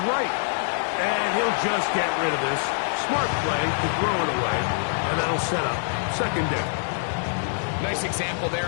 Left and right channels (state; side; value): silent; right; digital silence